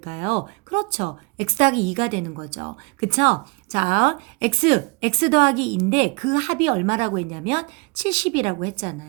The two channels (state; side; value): quieter; left; 29.5 dB